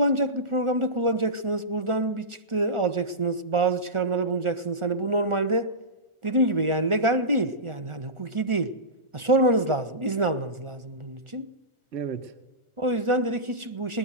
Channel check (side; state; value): left; late; 1.4 ms